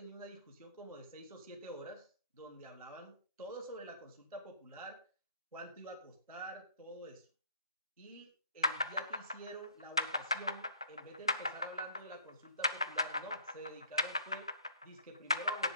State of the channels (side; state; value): both; inverted; correlation -0.52